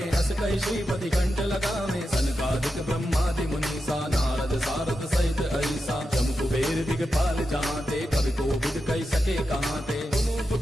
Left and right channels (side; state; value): both; normal; correlation 0.89